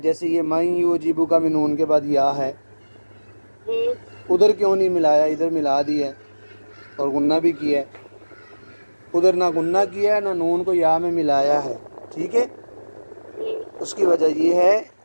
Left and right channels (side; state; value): both; inverted; correlation -1.00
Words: ये मैं युअजिबु का भी नून के बाद या है। उधर क्यों नहीं मिलाया, इधर मिला दिया और गुन्ना भी किया है। उधर ना गुन्ना किया है ना नून को या में मिलाया है। ठीक है, उसकी वजह ये है